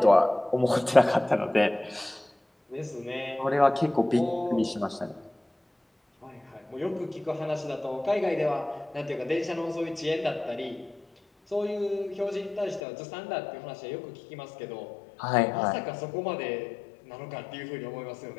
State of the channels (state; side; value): drops out; right; at 12.8 s